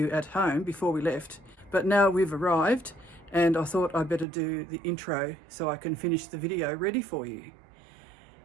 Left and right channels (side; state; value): left; drops out; at 4.2 s